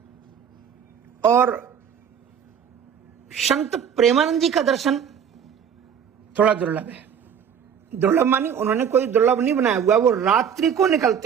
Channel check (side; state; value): left; quieter; 7.9 dB